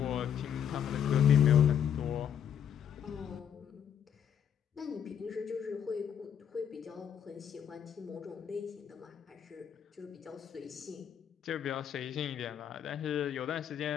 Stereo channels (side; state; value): right; quieter; 8.7 dB